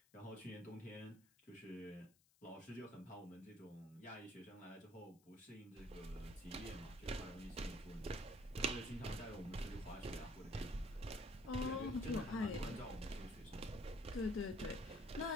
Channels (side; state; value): left; noise; hiss, 30 dB below the sound